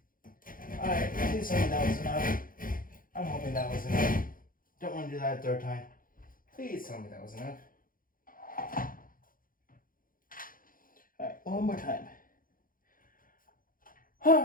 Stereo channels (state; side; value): late; right; 0.40 ms